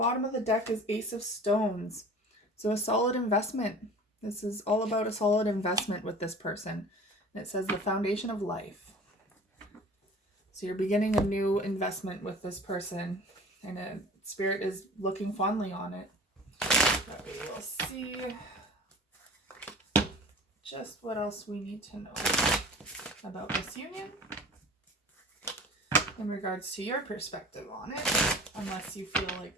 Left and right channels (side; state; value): both; normal; correlation 0.41